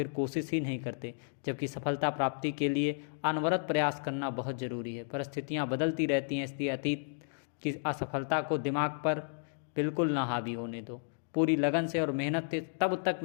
कोशिश ही नहीं करते। जबकि सफलता प्राप्ति के लिए अनवरत प्रयास करना बहुत ज़रूरी है। परिस्थितियाँ बदलती रहती हैं, इसलिए अतीत की असफलता को दिमाग पर बिल्कुल ना हावी होने दो। पूरी लगन से और मेहनत से तब तक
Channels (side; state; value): right; silent; digital silence